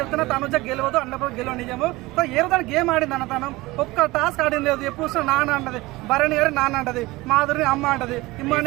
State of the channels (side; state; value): left; quieter; 20.6 dB